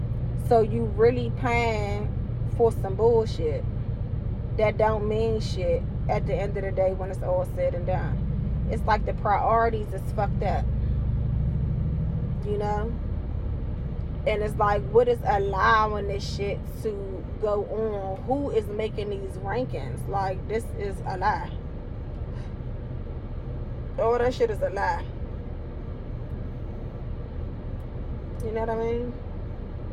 So you really paying for some bullshit that don't mean shit at the end of the day when it's all said and done. It's like the priorities is fucked up. You know? And it's like, what is allowing this shit to go on? Who is making these rankings? Like, this is a lie. All that shit is a lie. You know what I mean?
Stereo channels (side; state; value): both; identical; correlation 1.00